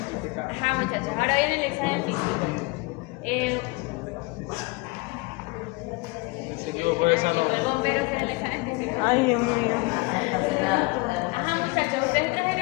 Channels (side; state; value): right; quieter; 25.9 dB